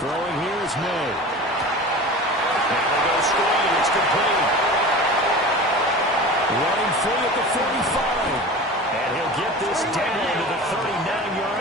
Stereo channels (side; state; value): both; normal; correlation 0.35